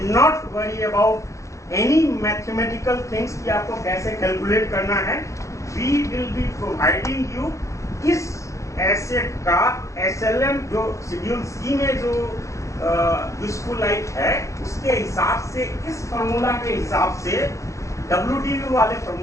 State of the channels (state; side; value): late; right; 0.15 ms